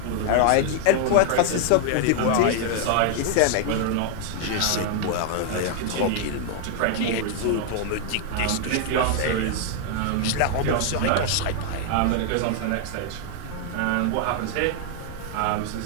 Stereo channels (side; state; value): both; different; correlation 0.00